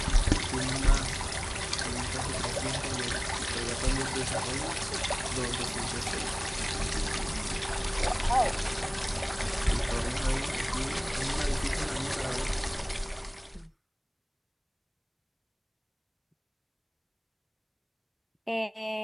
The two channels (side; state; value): both; identical; correlation 1.00